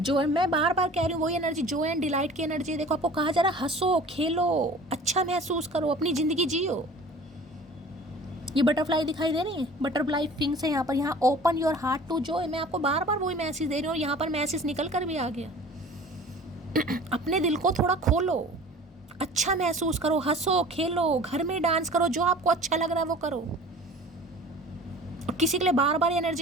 मैं बार बार कह रही हूँ वही एनर्जी, जो एंड डिलाइट की एनर्जी। देखो, आपको कहा जा रहा है हंसो, खेलो, अच्छा महसूस करो, अपनी ज़िंदगी जियो। ये बटरफ्लाई दिखाई दे रही है, बटरफ्लाई विंग्स है यहाँ पर। यहाँ open your heart to joy, मैं आपको बार बार वही मैसेज दे रही हूँ और यहाँ पर मैसेज निकल कर भी आ गया। अपने दिल को थोड़ा खोलो, अच्छा महसूस करो, हंसो, खेलो, घर में डांस करो, जो आपको अच्छा लग रहा है वो करो। और किसी के लिए बार बार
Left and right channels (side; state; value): both; normal; correlation 0.44